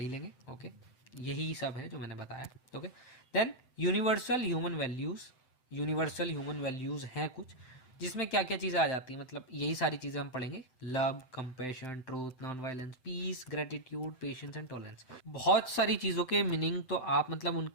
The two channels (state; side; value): late; right; 7.8 ms